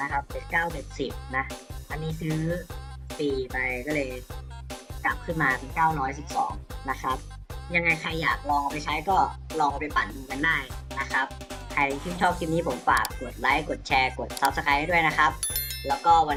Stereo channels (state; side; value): identical; both; correlation 1.00